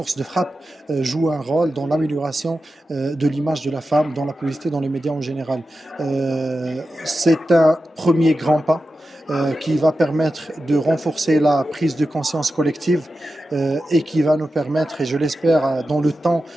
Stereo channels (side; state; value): both; normal; correlation 0.91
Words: de frappe, jouent un rôle dans l'amélioration de l'image de la femme, dans la publicité, dans les médias en général. C'est un premier grand pas qui va permettre de renforcer la prise de conscience collective et qui va nous permettre, et je l'espère dans le temps,